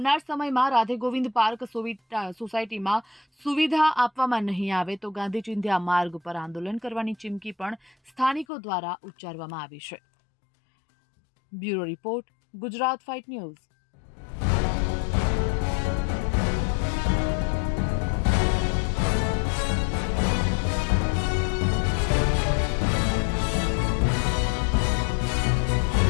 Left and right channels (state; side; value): drops out; right; at 8.5 s